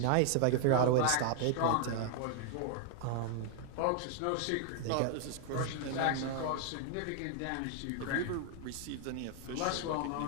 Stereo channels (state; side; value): different; both; correlation 0.00